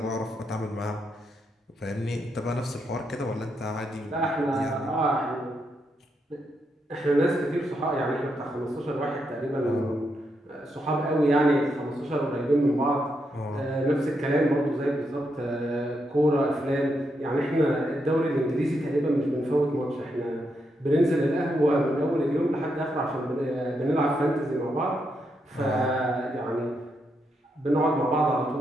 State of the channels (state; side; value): normal; both; correlation 0.81